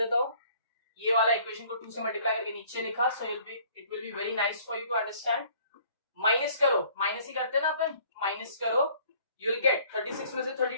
हूं. ये वाला इक्वेशन को 2 से मल्टीप्लाई करके नीचे लिखा, so it will be very nice for you to understand. Minus करो, माइनस ही करते हैं ना अपन, माइनस करो, यू विल गेट 36 में से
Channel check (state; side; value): inverted; both; correlation -0.57